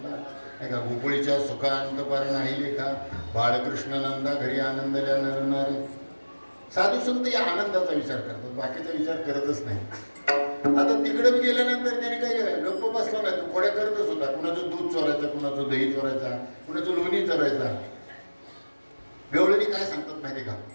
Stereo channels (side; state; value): both; inverted; correlation -1.00